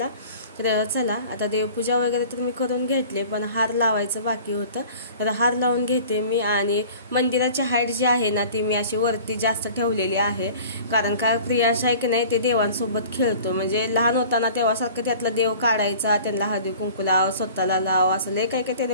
तर चला आता देवपूजा वगैरे तर मी करून घेतले, पण हार लावायचं बाकी होतं. तर हार लावून घेते मी. आणि मंदिराची हाईट जी आहे ना ती मी अशी वरती जास्त ठेवलेली आहे, कारण का प्रियांश आहे की नाही ते देवांसोबत खेळतो. म्हणजे लहान होताना तेव्हासारखं त्यातला देव काढायचा, त्यांना हळदी कुंकू लाव, स्वतःला लाव, असं लय काही त्याने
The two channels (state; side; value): inverted; both; correlation -0.45